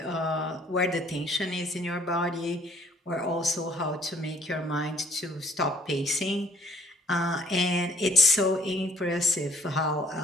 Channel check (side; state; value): both; normal; correlation 0.59